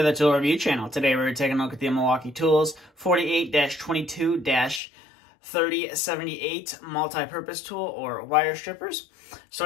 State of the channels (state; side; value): drops out; right; at 4.8 s